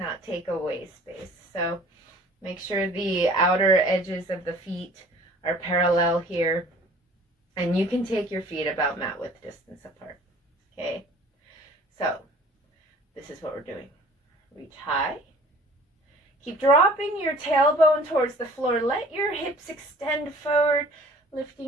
take away space. So make sure the outer edges of the feet are parallel here. And you can take your feet about mat width distance apart. Okay? So this is what we're doing. Reach high. Keep dropping your tailbone towards the floor. Let your hips extend forward,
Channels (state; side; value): normal; both; correlation 0.50